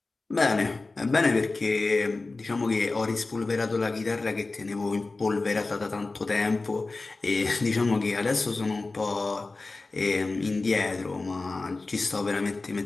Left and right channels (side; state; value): right; quieter; 3.5 dB